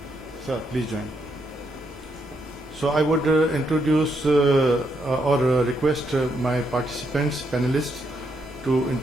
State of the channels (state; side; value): normal; both; correlation 0.77